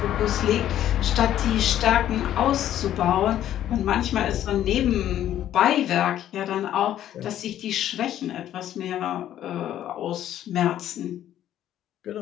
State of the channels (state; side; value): quieter; right; 11.7 dB